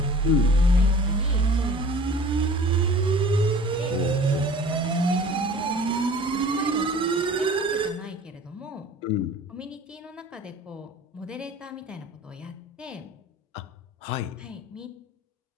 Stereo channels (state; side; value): normal; both; correlation 0.45